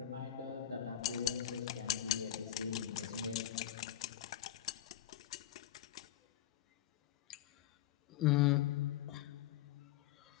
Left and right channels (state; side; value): quieter; right; 11.9 dB